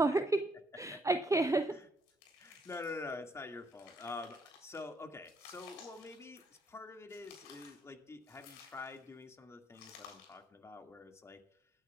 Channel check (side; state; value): both; normal; correlation 0.72